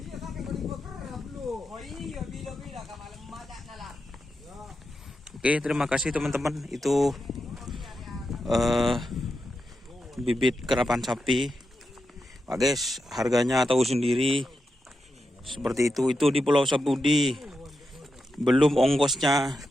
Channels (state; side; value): normal; both; correlation 0.87